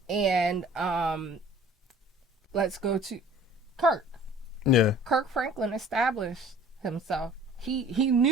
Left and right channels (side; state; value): both; normal; correlation 0.49